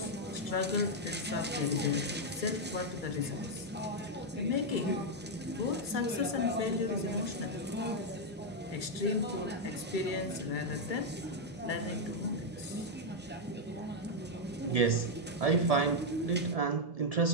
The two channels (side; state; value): both; normal; correlation 0.00